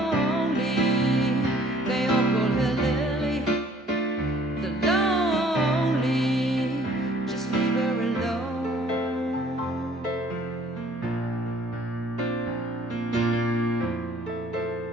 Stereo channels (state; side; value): normal; both; correlation 0.56